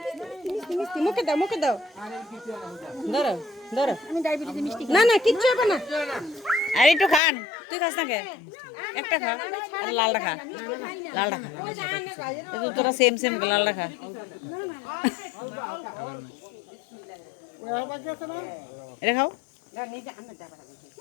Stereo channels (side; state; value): right; drops out; at 7.2 s